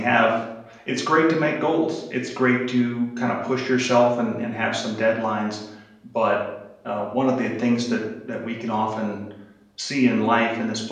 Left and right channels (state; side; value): identical; both; correlation 1.00